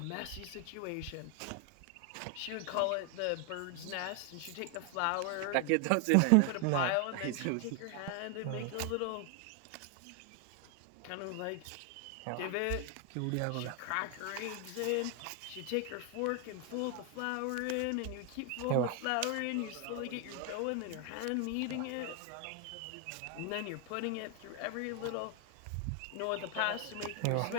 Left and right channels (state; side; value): different; both; correlation 0.00